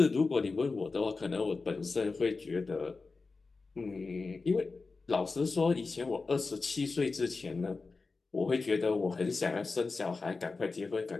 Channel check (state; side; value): quieter; right; 4.1 dB